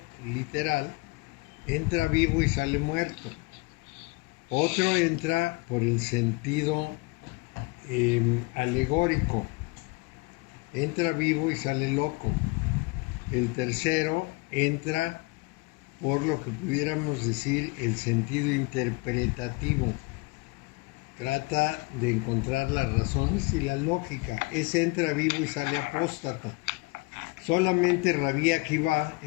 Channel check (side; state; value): right; quieter; 25.2 dB